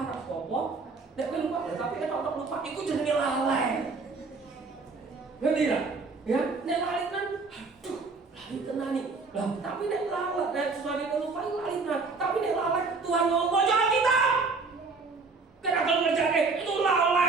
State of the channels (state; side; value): quieter; left; 4.2 dB